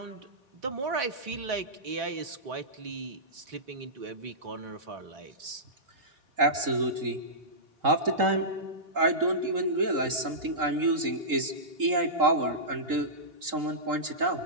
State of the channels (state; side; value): late; left; 3.8 ms